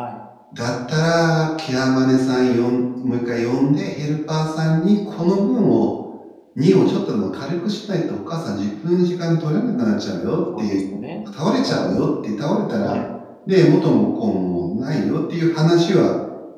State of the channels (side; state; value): both; identical; correlation 1.00